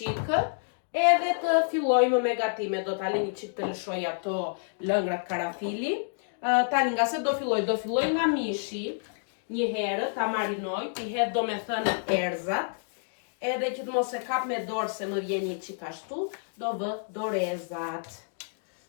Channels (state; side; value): silent; right; digital silence